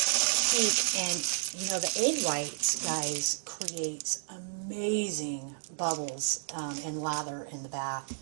peak. And you know, the egg whites, guys, creates amazing bubbles and lather in the bath.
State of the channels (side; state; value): left; silent; digital silence